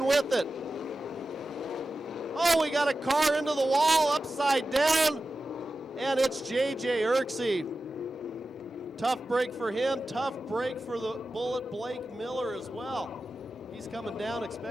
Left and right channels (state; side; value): normal; both; correlation 0.93